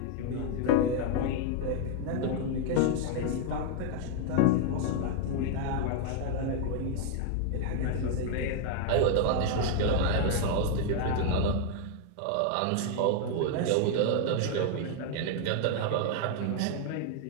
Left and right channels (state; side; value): different; both; correlation 0.00